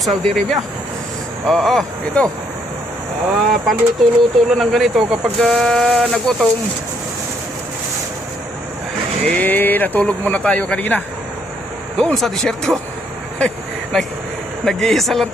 Saudi Arabia. Ito. Paluto-luto lang ng ganito kapag nagutom. Natulog muna tayo kanina doon sa disyerto. Nag-iisa lang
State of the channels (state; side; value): normal; both; correlation 0.70